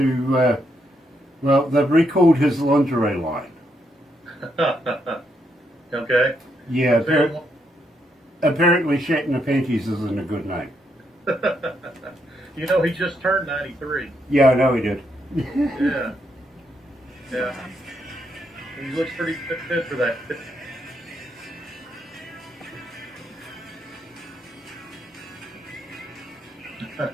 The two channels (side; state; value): both; normal; correlation 0.78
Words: well, they've recalled his lingerie line. Okay. Yeah, apparently Shatner Panties isn't a good name. You know, he just turned 93. Yeah, I know he did. Yeah. He looks pretty fit for that.